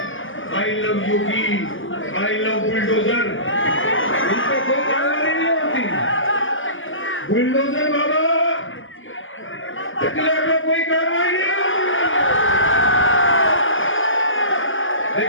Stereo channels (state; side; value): late; right; 0.58 ms